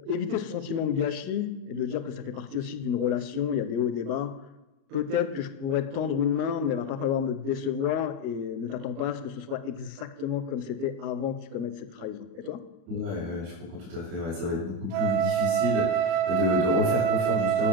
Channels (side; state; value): left; late; 37 ms